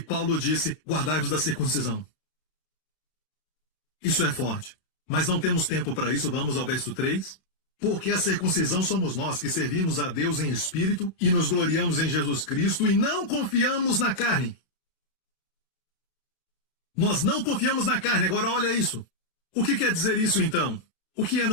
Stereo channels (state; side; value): late; right; 32 ms